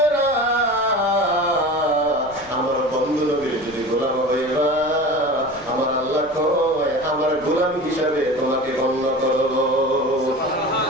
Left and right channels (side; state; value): left; noise; rumble, 22 dB below the sound